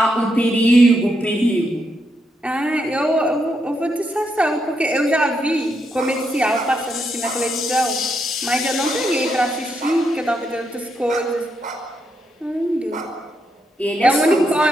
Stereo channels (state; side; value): normal; both; correlation 0.80